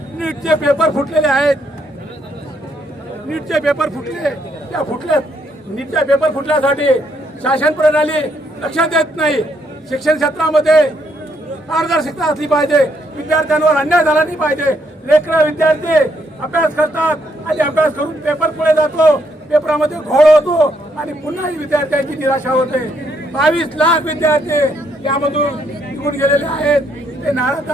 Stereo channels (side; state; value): both; normal; correlation 0.73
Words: नीटचे पेपर फुटलेले आहेत, नीटचे पेपर फुटले, त्या नीटच्या पेपर फुटल्यासाठी शासन प्रणाली लक्ष देत नाही। शिक्षण क्षेत्रामध्ये पारदर्शकता असली पाहिजे, विद्यार्थ्यांवर अन्याय झाला नाही पाहिजे। लेकरं विद्यार्थी अभ्यास करतात आणि अभ्यास करून पेपर पुढे जातो, पेपरामध्ये घोळ होतो आणि पुन्हा विद्यार्थ्यांची निराशा होते। 22 लाख विद्यार्थी यामधून निघून गेलेले आहेत, ते नाराज